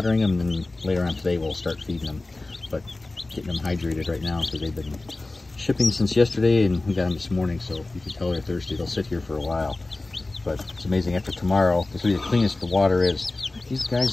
them, and then later on today we'll start feeding them. But getting them hydrated right now because they've been shipping since yesterday, and we got them this morning, so you can tell they're thirsty. They'll sit here for a while. But it's amazing, after tomorrow, this will be the cleanest the water is. These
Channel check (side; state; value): right; quieter; 3.1 dB